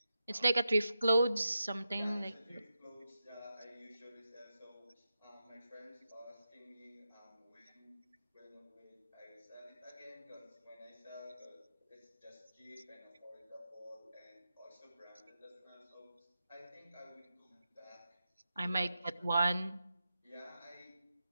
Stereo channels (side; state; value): both; inverted; correlation -0.89